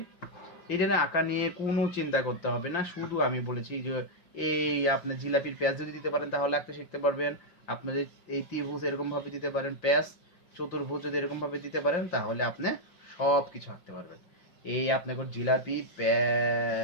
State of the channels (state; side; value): late; right; 5.8 ms